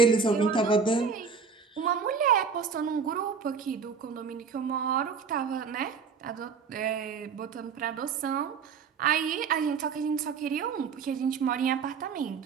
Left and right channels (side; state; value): left; quieter; 5.8 dB